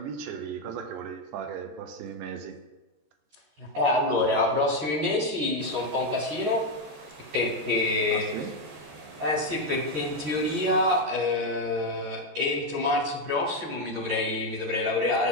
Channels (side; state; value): left; late; 14 ms